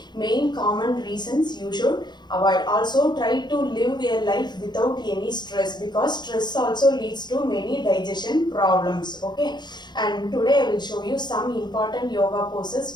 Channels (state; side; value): late; right; 0.21 ms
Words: main common reasons you should avoid. Also try to live a life without any stress because stress also leads to many digestion problems. Okay, and today I will show you some important yoga